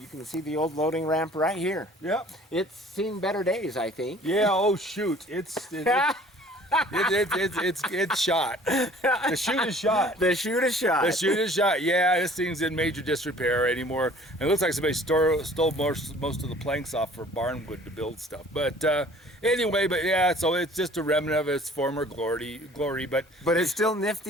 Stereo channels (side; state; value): both; normal; correlation 0.51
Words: can see the old loading ramp right here. Yep. It's seen better days, I think. Yeah. Oh shoot! It's shot. The chute is shot. The chute is shot. The chute is shot. Yeah, this thing's in major disrepair anymore. And it looks like somebody stole most of the planks off for barnwood to build stuff. But anyway, so it's just a remnant of its former glory. But it's still